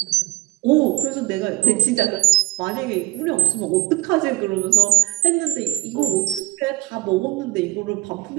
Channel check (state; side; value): quieter; left; 15.7 dB